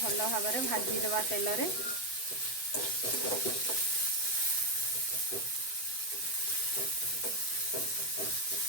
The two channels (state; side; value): late; right; 8.0 ms